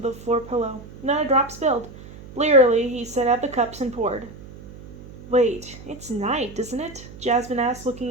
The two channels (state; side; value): noise; right; hum, 17 dB below the sound